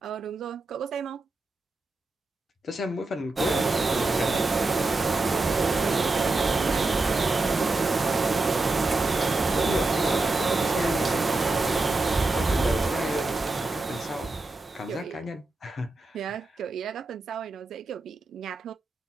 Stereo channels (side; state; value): left; quieter; 3.2 dB